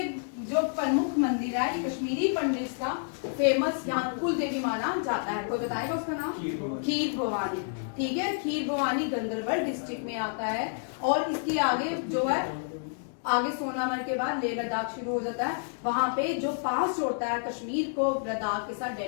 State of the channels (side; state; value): right; silent; digital silence